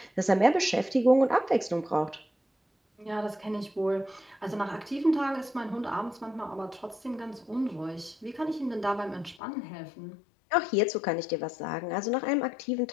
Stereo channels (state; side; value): drops out; right; at 9.4 s